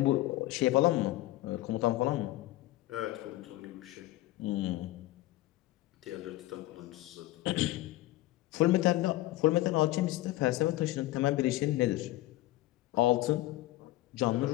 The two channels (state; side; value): quieter; right; 16.9 dB